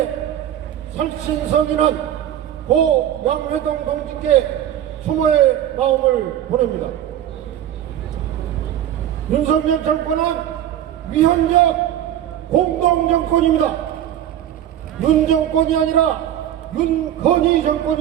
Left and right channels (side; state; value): left; quieter; 11.2 dB